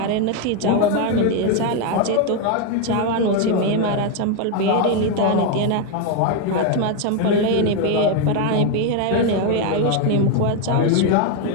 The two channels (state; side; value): different; both; correlation 0.02